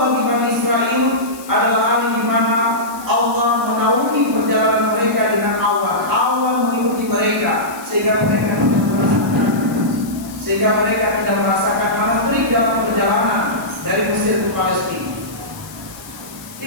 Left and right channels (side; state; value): left; noise; hiss, 18 dB below the sound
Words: Bani Israel adalah hari di mana Allah menaungi perjalanan mereka dengan awan mengikuti mereka sehingga mereka tidak merasakan panas terik dalam perjalanan dari Mesir ke Palestina.